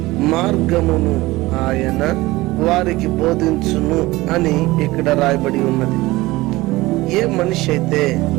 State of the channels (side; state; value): left; quieter; 19.6 dB